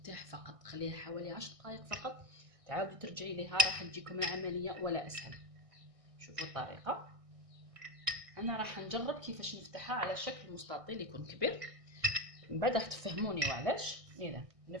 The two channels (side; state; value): left; late; 1.6 ms